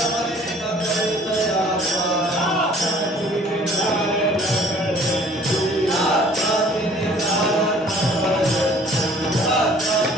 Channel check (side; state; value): both; normal; correlation 0.54